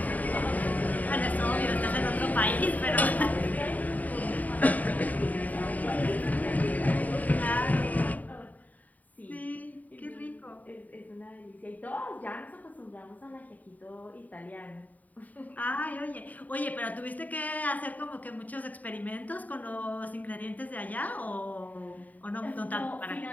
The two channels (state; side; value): late; right; 0.076 ms